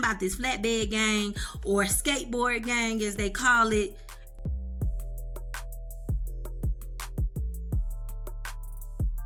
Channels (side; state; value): both; identical; correlation 1.00